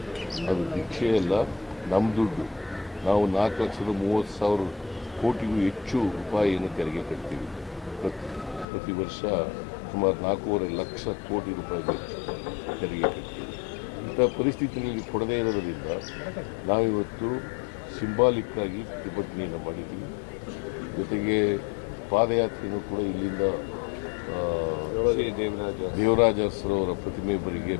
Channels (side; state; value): right; drops out; at 8.7 s